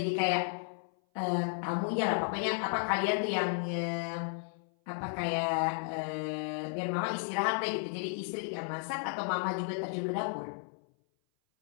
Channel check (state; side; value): silent; right; 55 dB below the other